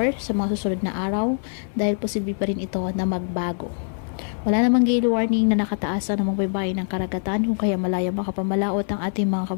sa mga susunod na araw dahil posible pa rin ito na magbago. Wala namang gale warning na nakataasa ng mga baybay ng karagatan kung kaya malaya makapamalaot ang ating mga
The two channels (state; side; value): silent; right; 58 dB below the other